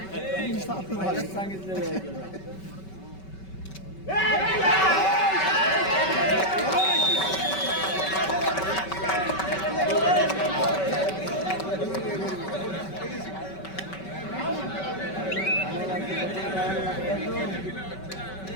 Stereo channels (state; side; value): late; right; 5.2 ms